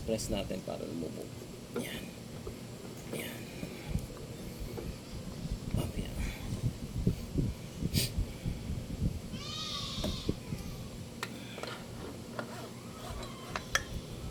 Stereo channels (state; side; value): identical; both; correlation 1.00